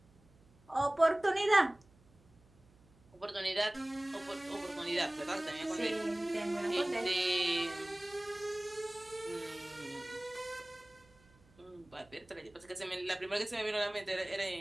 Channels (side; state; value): right; noise; hum, 29 dB below the sound